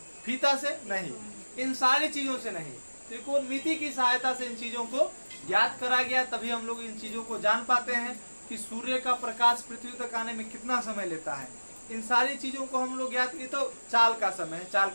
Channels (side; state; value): both; inverted; correlation -1.00